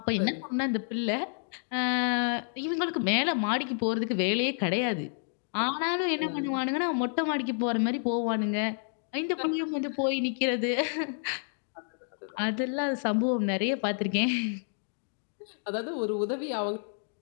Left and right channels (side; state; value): right; silent; digital silence